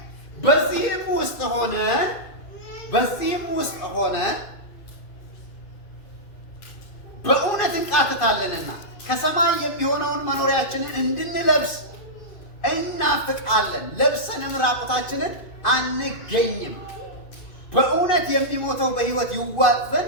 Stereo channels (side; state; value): right; late; 2.6 ms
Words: በዚህም ውስጥ ሆነን በእውነት እንቃትታለንና ከሰማይ የሚሆነውን መኖሪያችንን እንድንለብስ እናፍቃለን። ለብሰንም ራቁታችንን አንገኝም። በእውነት የሚሞተው በሕይወት ይዋጥ